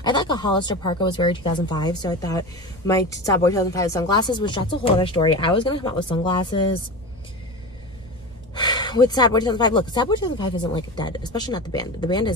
I thought a Hollister parka was very 2005, so I thought my Sad Boy 2005 sunglasses, which that's a whole other story. I was gonna come out with sunglasses with Sad Boy 2005. Look, Sad Boy 2005 isn't like dead, especially not the band. The band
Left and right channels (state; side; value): normal; both; correlation 0.27